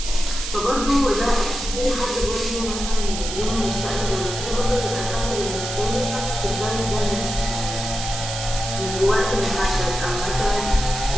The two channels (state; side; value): noise; right; hiss, 6 dB below the sound